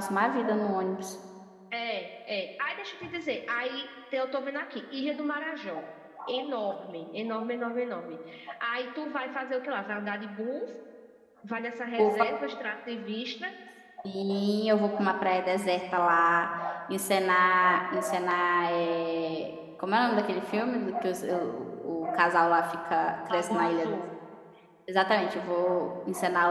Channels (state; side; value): identical; both; correlation 1.00